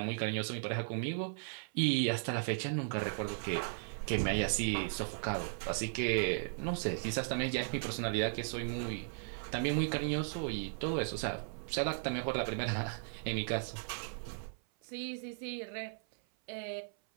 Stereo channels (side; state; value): left; silent; 53 dB below the other